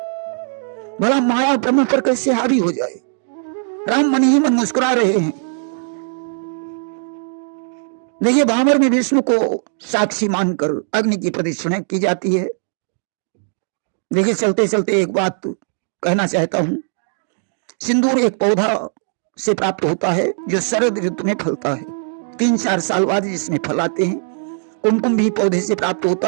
भला माया ब्रह्म पर कैसे हावी हो जाए। राम मन ही मन मुस्कुरा रहे हैं। देखिए भामर में विष्णु को साक्षी मानकर अग्नि की प्रदक्षिणा की जाती है। देखिए, चलते चलते एक बात कहना चाहता हूं। सिंदूर एक पौधा से प्राप्त होता है जो शरद ऋतु में फलता है। 3-4 साल बाद इसमें फल आते हैं। कुमकुम भी पौधे से प्राप्त होता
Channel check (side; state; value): left; silent; digital silence